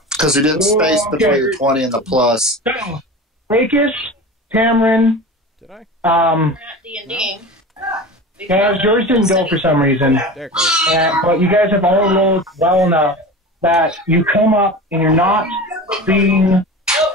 Because we did space between the 20 and the plus. So, Rakis, Cameron, Did I? D&D. guys, yours didn't go for some reason. There it goes. But you guys have all rolled well enough that you come up and you're not being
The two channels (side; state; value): both; normal; correlation 0.32